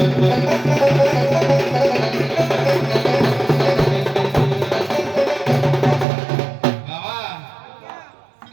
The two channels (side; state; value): left; drops out; at 6.1 s